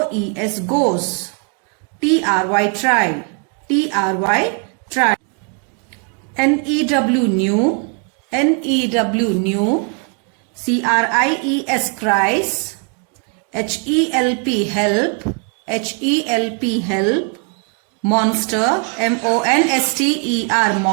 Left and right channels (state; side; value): quieter; left; 39.4 dB